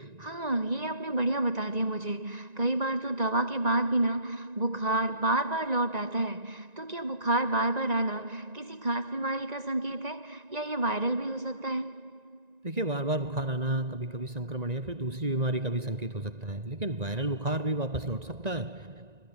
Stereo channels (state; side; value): late; left; 1.9 ms